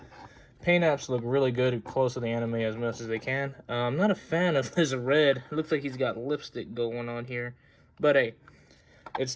paint apps look really good, close to the anime as much as they can. I'm not a fan of this red. It looks like he's got lipstick going on here. But hey, it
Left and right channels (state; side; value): identical; both; correlation 1.00